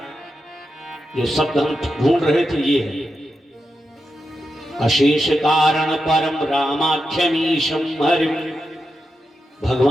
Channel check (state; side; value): normal; both; correlation 0.88